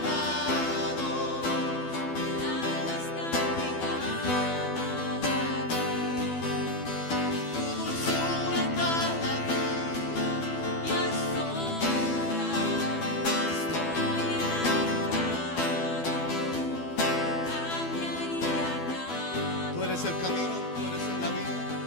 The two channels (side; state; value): right; late; 12 ms